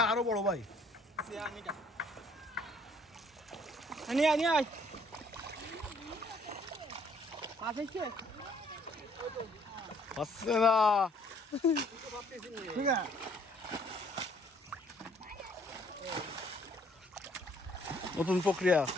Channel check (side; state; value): both; normal; correlation 0.62